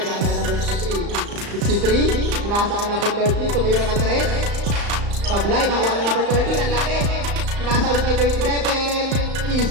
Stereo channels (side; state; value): left; late; 35 ms